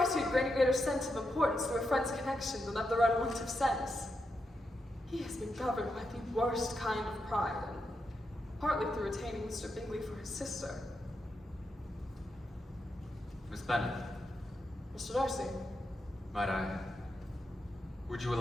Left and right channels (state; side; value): normal; both; correlation 0.85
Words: had gained a greater sense of importance through a friend's connection than of their own want of sense. He has been governed by the worst kind of pride, and partly through retaining Mr. Bingley for his sister. Miss Bennet, Mr. Darcy, would you